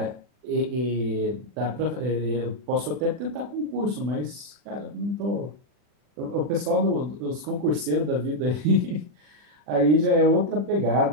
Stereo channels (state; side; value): late; left; 40 ms